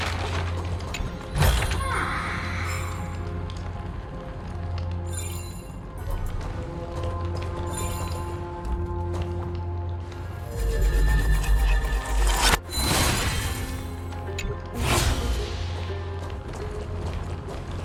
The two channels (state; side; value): identical; both; correlation 1.00